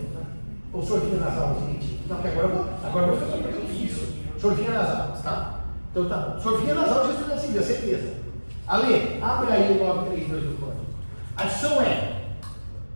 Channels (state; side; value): inverted; both; correlation -1.00